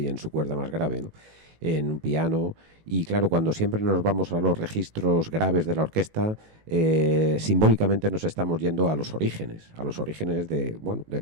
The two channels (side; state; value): left; late; 19 ms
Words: en su cuerda más grave, ¿no? En un piano. Y claro, cuando siempre nos vamos a los registros graves de la orquesta, simbólicamente nos estamos yendo a los orígenes de, bueno, de